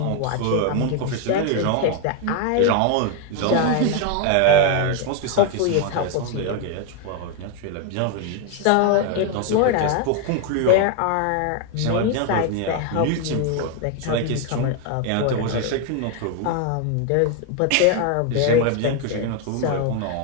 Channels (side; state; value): both; different; correlation 0.01